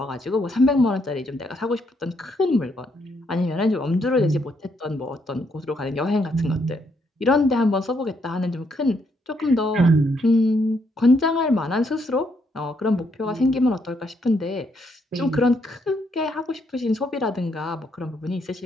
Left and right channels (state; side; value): normal; both; correlation 0.74